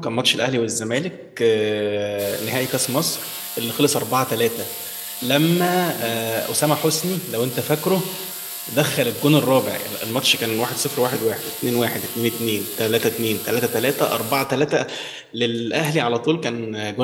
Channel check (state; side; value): identical; both; correlation 1.00